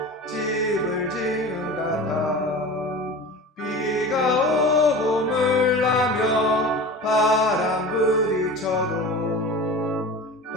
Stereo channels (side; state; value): both; normal; correlation 0.34